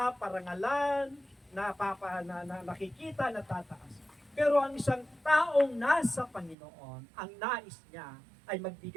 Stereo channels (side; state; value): left; drops out; at 6.6 s